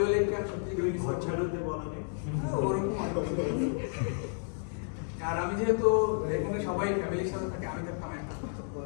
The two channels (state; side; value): silent; right; 55 dB below the other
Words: কাজ সত্যি করে ঘর ছাড়তে বলা নেই। ওরকম আর কিছু নেই। আর আমি যেহেতু এখানে সবাই ফ্যামিলির সাথে থাকে, আমি থাকতাম একা